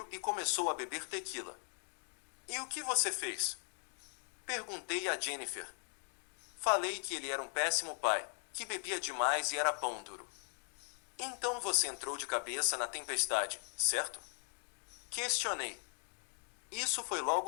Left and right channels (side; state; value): right; silent; 52 dB below the other